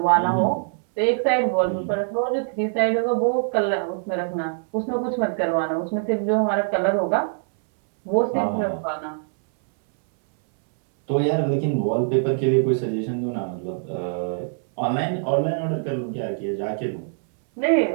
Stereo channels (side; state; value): left; silent; 63 dB below the other